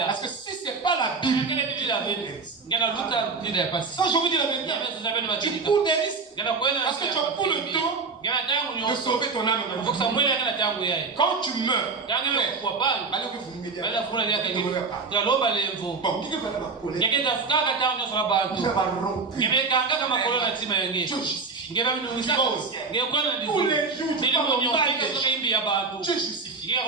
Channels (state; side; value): quieter; left; 4.4 dB